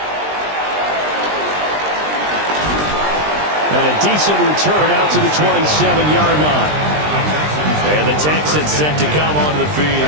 And a decent return out to the 27-yard line. And the Texans set to come onto the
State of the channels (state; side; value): late; left; 20 ms